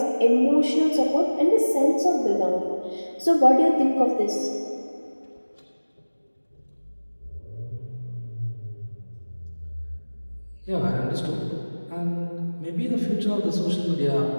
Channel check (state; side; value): inverted; both; correlation -1.00